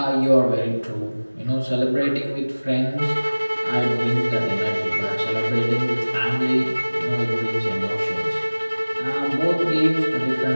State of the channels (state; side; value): inverted; both; correlation -1.00